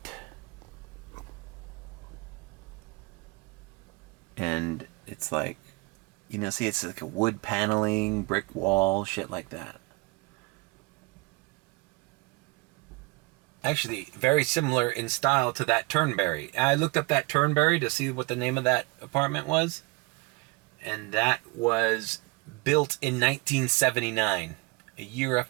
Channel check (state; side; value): quieter; left; 27.2 dB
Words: And it's like, you know, see, it's like a wood paneling, brick wall, shit like that. Actually, very similar in style to that Turnberry. I looked up that Turnberry to see what the name of that apartment was. And that was built in 1979, a year